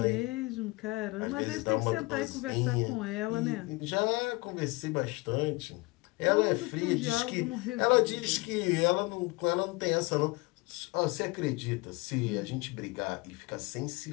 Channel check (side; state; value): right; quieter; 24.5 dB